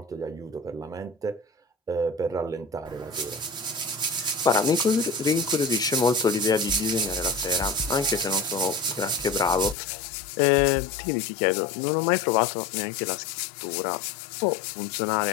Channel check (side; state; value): right; drops out; at 9.8 s